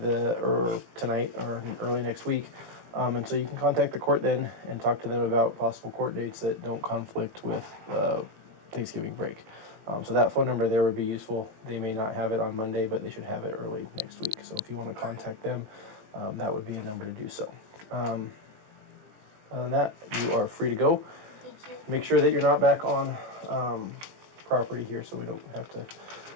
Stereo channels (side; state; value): left; late; 19 ms